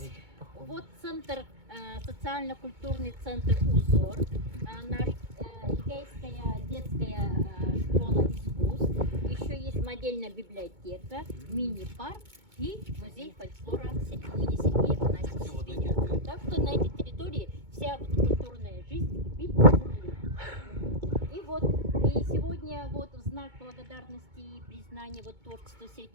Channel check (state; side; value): late; left; 2.2 ms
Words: вот центр, социально-культурный центр «Узор», наш Эдгейская детская школа искусств, еще есть модельная библиотека, мини-парк и музей фольклора имени Сергея Афанасьевича Зверева. Так что на этой территории вся вот культурная жизнь кипит. И вот и сегодня вот в знак благодарности и признания вот творчеству